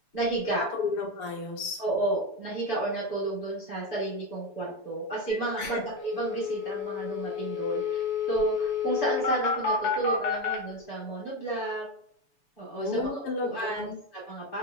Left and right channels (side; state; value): right; late; 6.9 ms